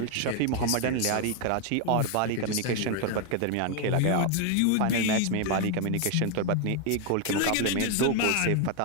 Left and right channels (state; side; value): different; both; correlation 0.01